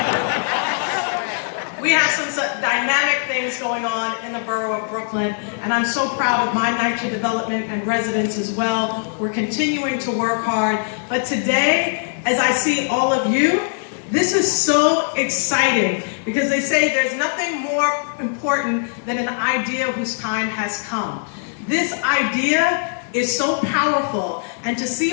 we have some dynamic things going on in the borough of Brooklyn, and I'm so proud of my NYCHA development and residents as well. We're continuing to work hard, but today, as I see all of you, this is so exciting because they say there's nothing more important than an idea whose time has come. This idea is so powerful, and to see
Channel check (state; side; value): silent; right; digital silence